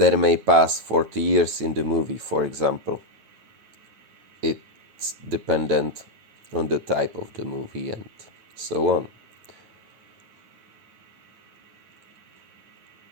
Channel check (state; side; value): late; left; 9.3 ms